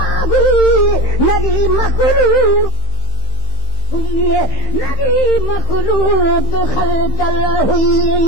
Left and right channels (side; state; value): right; late; 15 ms